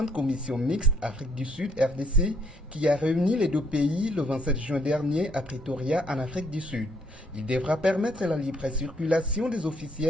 Commission mixte Afrique du Sud RDC qui a réuni les deux pays le 27 juin dernier à Pretoria en Afrique du Sud. Il devra permettre la libre circulation des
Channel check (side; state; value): both; normal; correlation 0.68